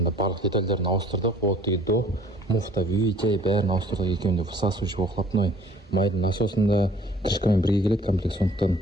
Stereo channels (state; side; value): normal; both; correlation 0.54